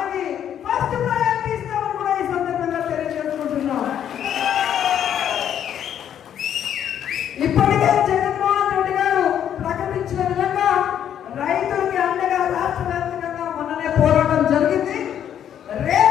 ఫస్ట్ ప్రయారిటీ ఇస్తామని కూడా ఈ సందర్భంగా తెలియజేసుకుంటున్నాం. ఇప్పటికే జగన్మోహన్ రెడ్డి గారు ప్రకటించిన విధంగా రైతులకి అండగా రాష్ట్ర వ్యాప్తంగా మొన్ననే పోరాటం జరిగింది.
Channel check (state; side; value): quieter; right; 9.7 dB